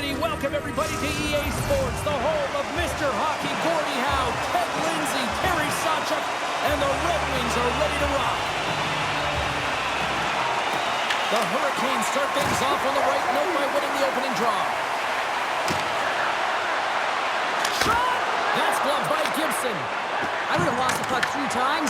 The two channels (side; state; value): both; identical; correlation 1.00